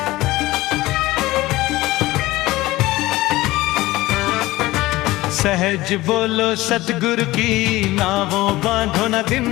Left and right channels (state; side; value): quieter; right; 18.5 dB